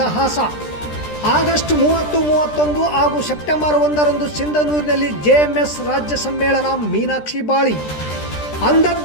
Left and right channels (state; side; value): late; right; 13 ms